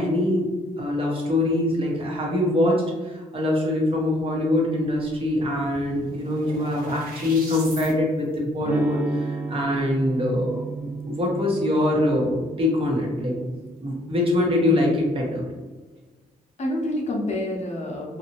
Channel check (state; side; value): normal; both; correlation 0.63